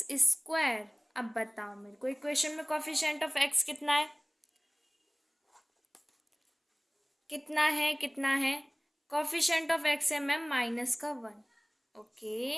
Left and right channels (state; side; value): identical; both; correlation 1.00